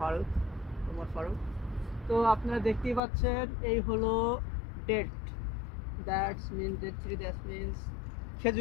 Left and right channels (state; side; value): drops out; right; at 3.0 s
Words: Omar Faruk. তো আপনারা দেখতেই পাচ্ছেন এই হলো ডেট, দ্যাটস মিনস